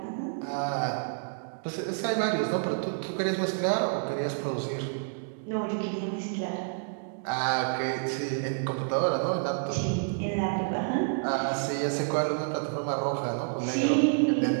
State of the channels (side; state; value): left; silent; digital silence